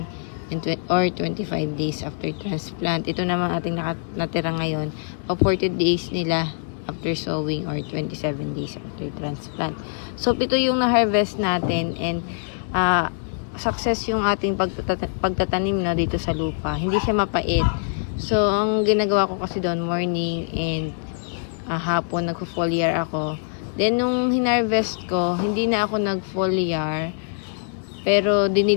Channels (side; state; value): right; silent; digital silence